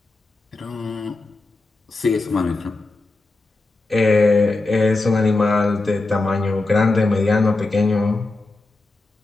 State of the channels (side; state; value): right; quieter; 3.2 dB